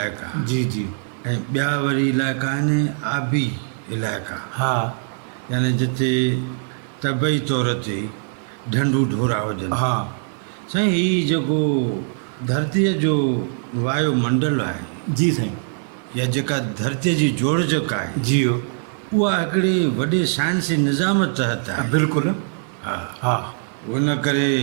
जी जी। ऐं ॿिया वरी इलाइक़ा आहिनि आबी इलाइक़ा, हा। यानी जिते तबई तौर ते ढंढूं ढोरा हुजनि। हा। साईं हीउ जेको धरतीअ जो वायुमंडल आहे, जी साईं। या जेका धरतीअ जी जोड़जक आहे, जियो। उहा हिकिड़े वॾे साइंसी निज़ाम तहत आहे। बिल्कुलु। हा। हा। उन करे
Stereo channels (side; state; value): left; silent; digital silence